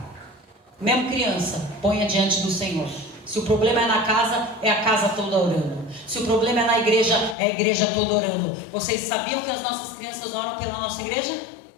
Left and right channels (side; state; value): right; drops out; at 7.4 s